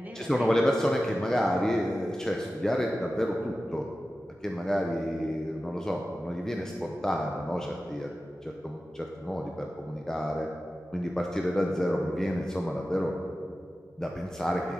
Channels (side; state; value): both; normal; correlation 0.94